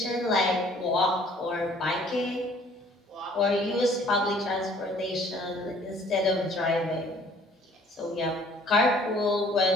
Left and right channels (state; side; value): normal; both; correlation 0.56